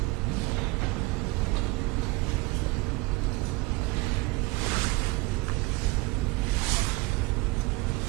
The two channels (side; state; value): left; quieter; 23.5 dB